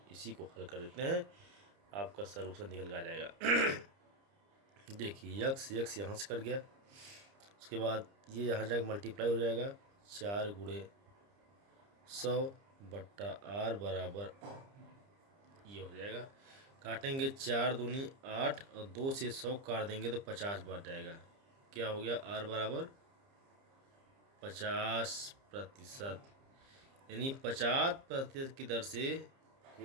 इसी को हल कर देते हैं, आपका सलूशन निकल के आ जाएगा। देखिए यक्स यहाँ से कट गया, उसके बाद ये यहाँ जाकर मल्टीप्लाई हो जाएगा। 4 गुणे 100 बट्टा r बराबर ये हो जाएगा। काटेंगे 4 दूनी 8 और 2 से 100 काट देंगे तो 50 बच जाएगा। क्या हो गया, r बराबर 50%, यानी 50% की दर से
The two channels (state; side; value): late; left; 30 ms